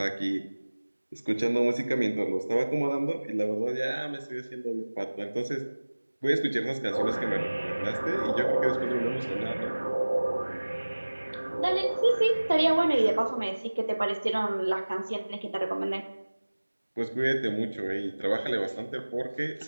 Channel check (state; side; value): inverted; both; correlation -1.00